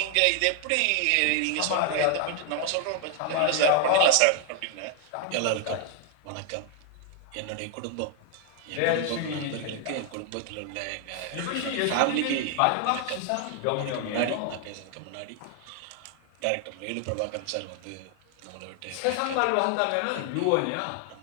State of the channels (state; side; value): different; both; correlation 0.00